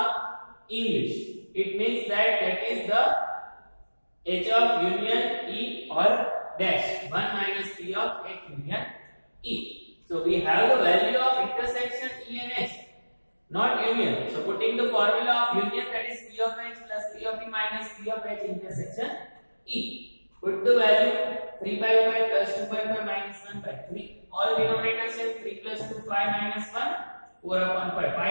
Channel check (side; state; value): both; inverted; correlation -1.00